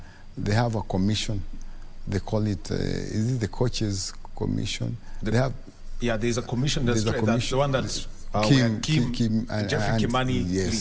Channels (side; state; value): both; identical; correlation 1.00